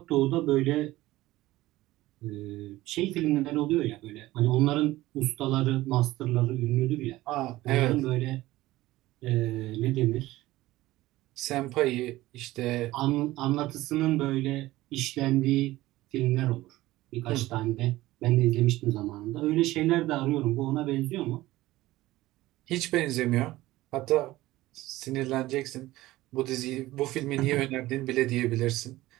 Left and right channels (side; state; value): left; quieter; 17.3 dB